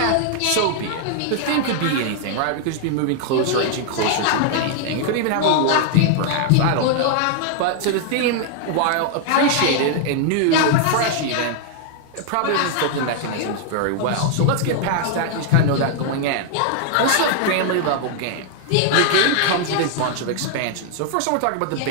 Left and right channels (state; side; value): different; both; correlation 0.00